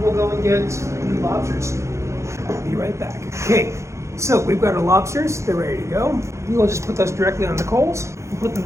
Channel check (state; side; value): late; left; 0.14 ms